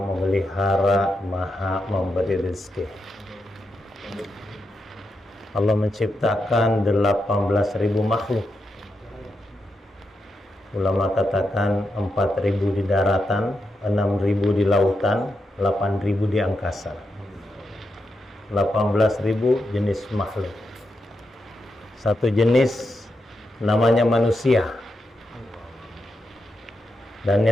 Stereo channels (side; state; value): both; normal; correlation 0.85